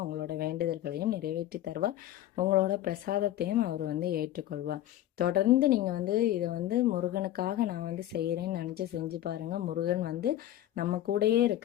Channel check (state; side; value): quieter; right; 13.2 dB